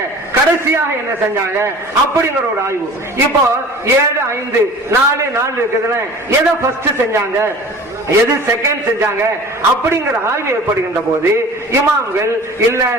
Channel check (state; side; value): normal; both; correlation 0.42